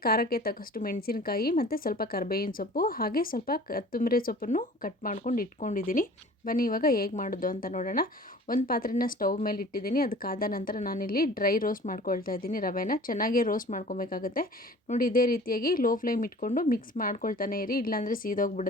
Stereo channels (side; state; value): both; normal; correlation 0.46